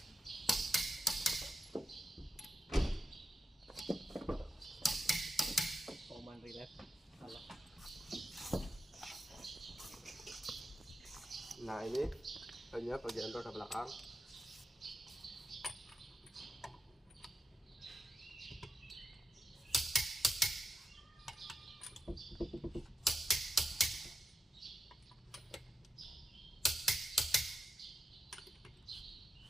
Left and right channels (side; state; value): both; normal; correlation 0.87